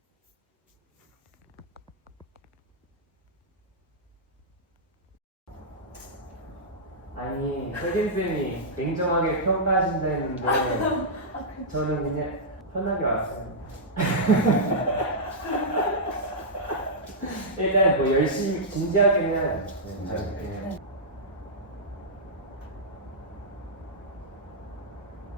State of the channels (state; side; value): normal; both; correlation -0.11